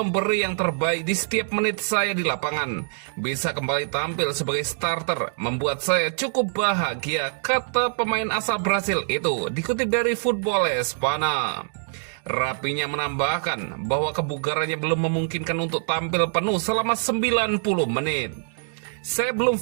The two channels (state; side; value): silent; left; digital silence